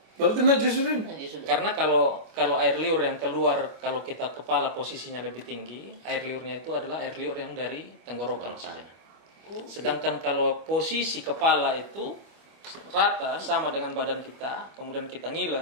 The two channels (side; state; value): left; late; 25 ms